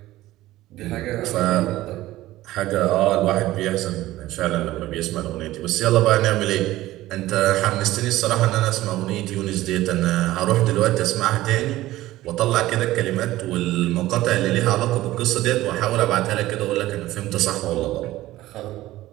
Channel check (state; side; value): quieter; left; 16.2 dB